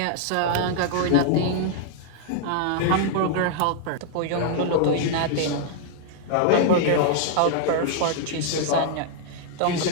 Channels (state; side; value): different; both; correlation -0.01